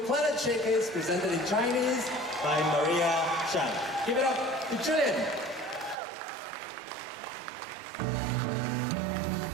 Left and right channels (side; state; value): left; drops out; at 6.0 s